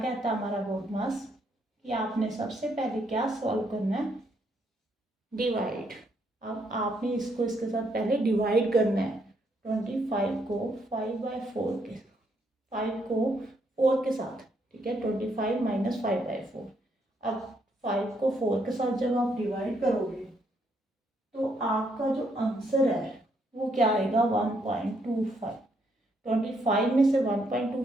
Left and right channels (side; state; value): both; normal; correlation 0.74